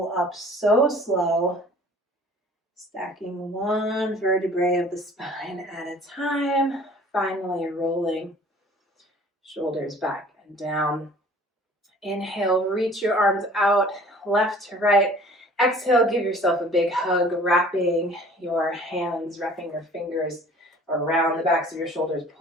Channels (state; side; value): normal; both; correlation 0.50